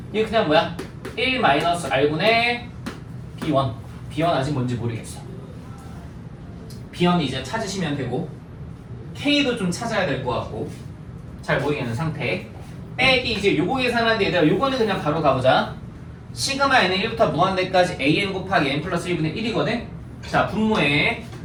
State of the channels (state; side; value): identical; both; correlation 1.00